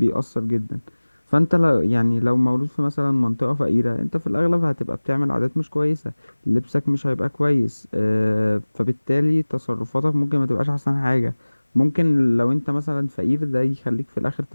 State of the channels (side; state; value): both; inverted; correlation -1.00